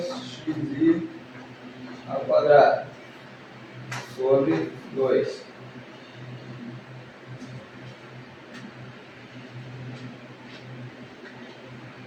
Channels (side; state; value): both; identical; correlation 1.00